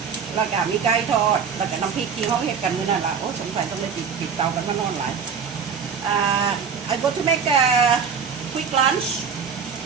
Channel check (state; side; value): quieter; left; 6.4 dB